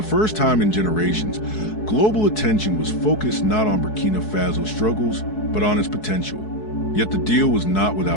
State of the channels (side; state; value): right; late; 4.7 ms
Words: first time in generations, global attention was focused not on Burkina Faso's struggles, but on its potential. Yet the deal was not